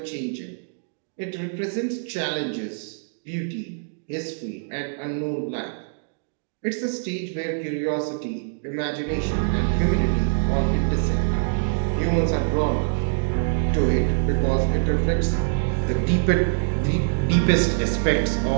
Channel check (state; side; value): silent; left; digital silence